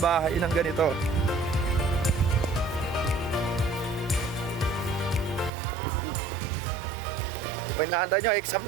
bahay ng ganito. Pinahanda nyo, exam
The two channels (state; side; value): drops out; left; at 5.5 s